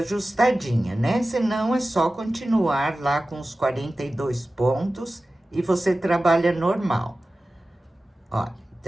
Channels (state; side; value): normal; both; correlation 0.95